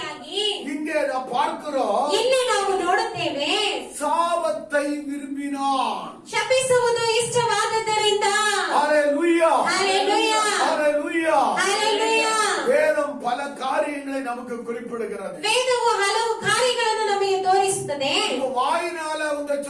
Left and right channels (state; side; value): identical; both; correlation 1.00